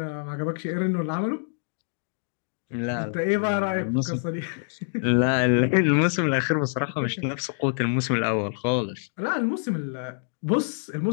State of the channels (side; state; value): right; silent; digital silence